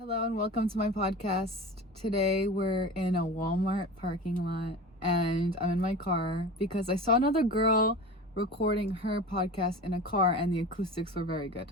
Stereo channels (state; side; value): normal; both; correlation 0.33